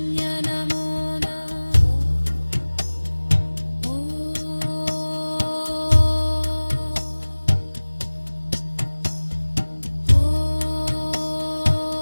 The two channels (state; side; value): inverted; both; correlation -1.00